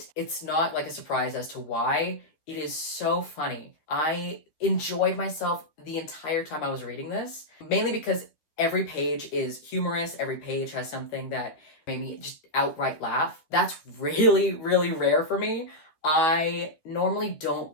It's not like a surprise as to why. It is so funny. I enjoyed myself the entire time I was reading this, mainly because every page is humorous, every page has something that made me just outright laugh. That's really, really rare for me. I normally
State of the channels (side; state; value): right; late; 13 ms